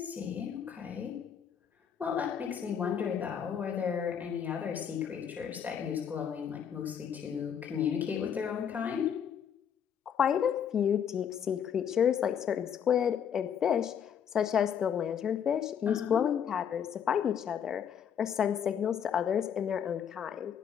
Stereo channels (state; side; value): quieter; right; 8.2 dB